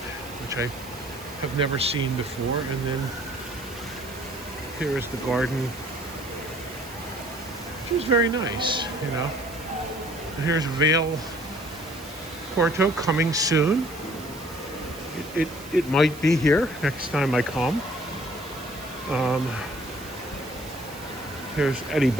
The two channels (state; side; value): noise; right; hiss, 18 dB below the sound